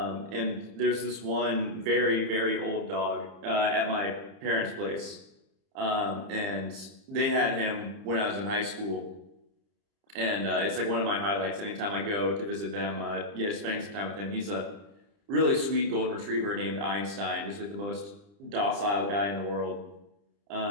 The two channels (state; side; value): late; left; 30 ms